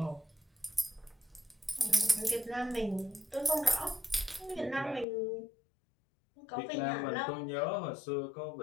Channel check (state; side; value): drops out; right; at 5.1 s